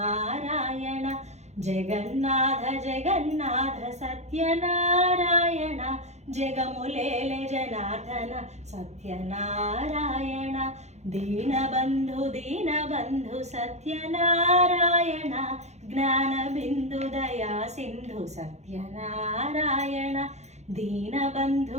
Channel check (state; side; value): late; left; 0.33 ms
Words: జగన్నాథ జగన్నాథ సత్యనారాయణ జగములేల జనార్దన సత్యనారాయణ. దీనబంధు దీనబంధు సత్యనారాయణ జ్ఞానబిందు దయా సింధు సత్యనారాయణ.